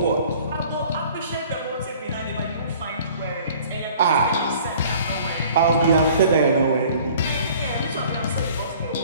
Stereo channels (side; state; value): both; inverted; correlation -0.51